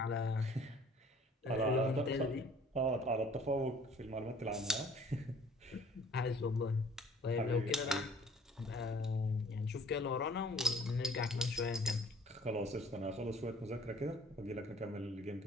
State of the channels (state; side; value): normal; both; correlation 0.54